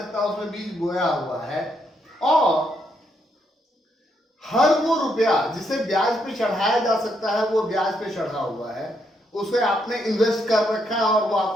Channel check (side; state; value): both; normal; correlation 0.77